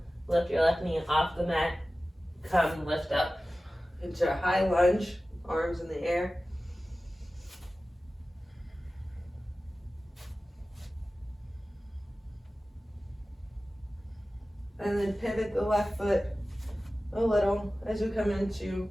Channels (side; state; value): both; normal; correlation 0.96